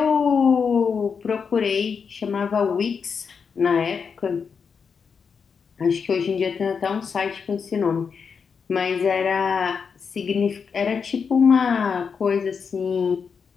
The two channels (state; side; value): quieter; right; 6.0 dB